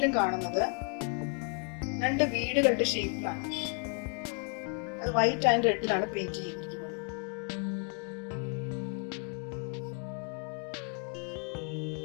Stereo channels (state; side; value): quieter; right; 38.6 dB